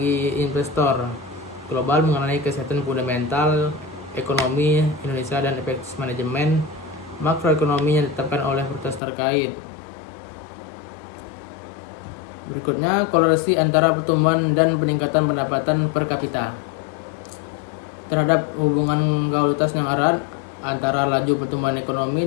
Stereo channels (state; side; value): drops out; right; at 9.0 s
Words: investor global mengenai kesehatan fundamental ekonomi Indonesia dan efektivitas manajemen makroekonomi yang ditetapkan oleh otoritas terkait. Berikutnya, korelasi antara pertumbuhan dan peningkatan pendapatan per kapita. Terhadap hubungan kausalitas yang erat antara laju pertumbuhan